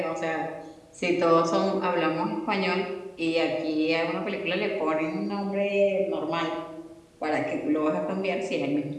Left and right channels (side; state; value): both; identical; correlation 1.00